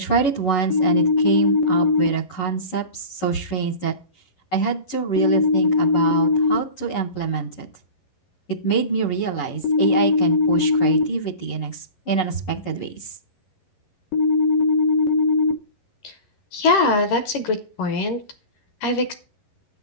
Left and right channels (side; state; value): right; late; 11 ms